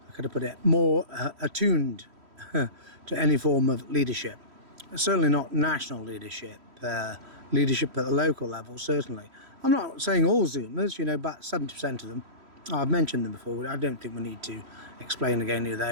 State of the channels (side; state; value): left; late; 3.1 ms